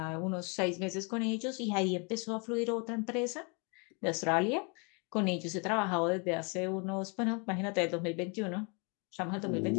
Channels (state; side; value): quieter; right; 33.8 dB